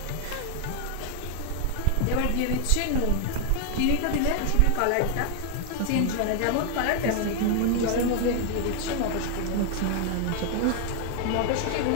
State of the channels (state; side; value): different; both; correlation 0.00